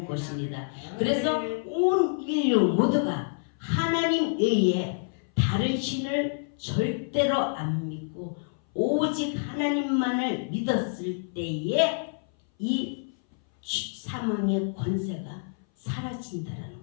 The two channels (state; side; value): silent; right; 58 dB below the other